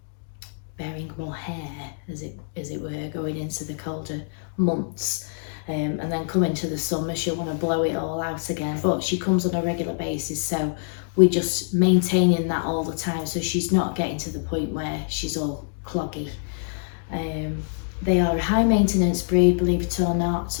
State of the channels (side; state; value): right; silent; digital silence